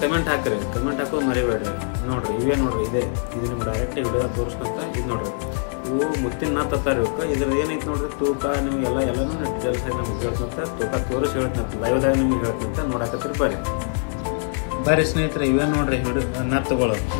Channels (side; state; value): right; silent; 59 dB below the other